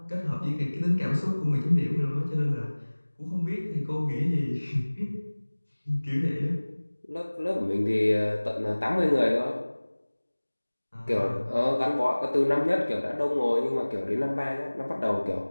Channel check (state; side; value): inverted; both; correlation -1.00